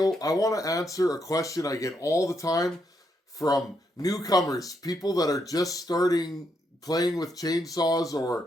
I want to answer a question I get all the time from newcomers, people that are just starting playing with chainsaws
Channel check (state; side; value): normal; both; correlation 0.79